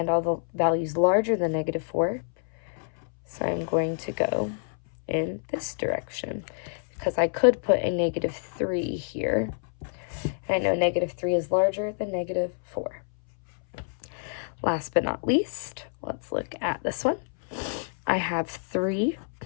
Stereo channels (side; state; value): right; silent; 59 dB below the other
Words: all the values larger than -4. So I'm going to go in this direction because I could put a -3 here. And I know -3 is larger than -4. Last but not least, let's look at this one. I have 3